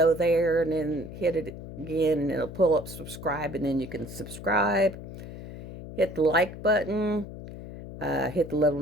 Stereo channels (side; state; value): left; noise; hum, 12 dB below the sound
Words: there and then hit it again, and it'll pull up subscribe, and then you can subscribe. Hit the like button. Hit the little